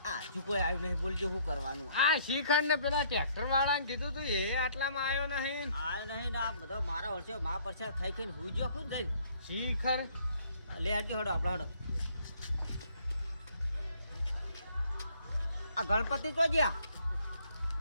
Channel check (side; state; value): both; inverted; correlation -0.62